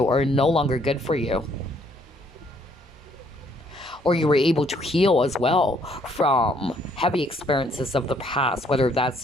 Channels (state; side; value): normal; both; correlation 0.66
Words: or no longer good for you. Or you were able to heal as well from heavy experiences of the past, whether